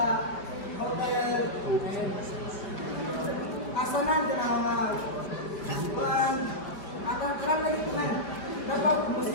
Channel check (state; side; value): late; right; 4.7 ms